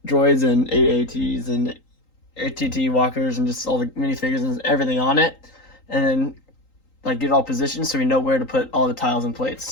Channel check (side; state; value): right; late; 3.8 ms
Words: droids and AATs and ATT walkers and just all the minifigures and everything on it. And then get it all positioned so we know where to put all the tiles and plates.